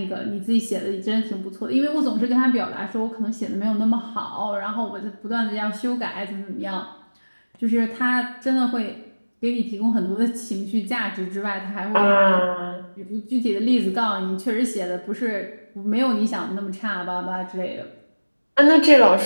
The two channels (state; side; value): inverted; both; correlation -1.00